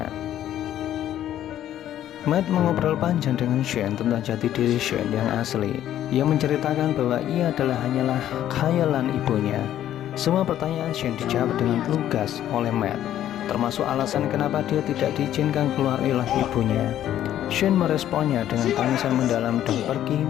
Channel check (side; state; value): right; quieter; 11.7 dB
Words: Matt mengobrol panjang dengan Shane tentang jati diri Shane yang asli. Ia menceritakan bahwa ia hanyalah khayalan ibunya. Semua pertanyaan Shane dijawab dengan lugas oleh Matt, termasuk alasan kenapa dia tidak diizinkan keluar oleh ibunya. Shane meresponnya dengan tangisan mendalam dan pergi